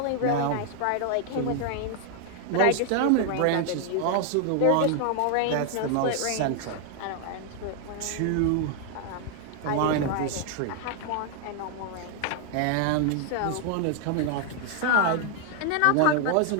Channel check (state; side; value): different; both; correlation 0.00